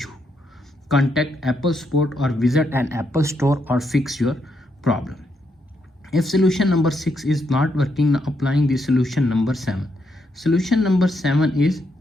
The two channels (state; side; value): normal; both; correlation 0.79